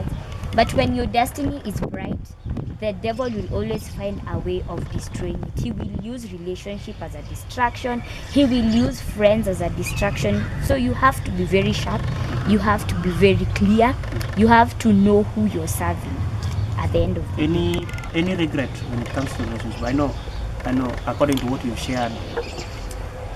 but when your destiny is bright, the devil will always find a way of destroying it. He will use relationship as a distraction. He will use friends as a distraction. So you have to be very sharp. You have to be very clear. You have to know who you're serving at the end of the day. Any regret when it comes to relationship? I know according to what you've shared,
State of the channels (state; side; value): identical; both; correlation 1.00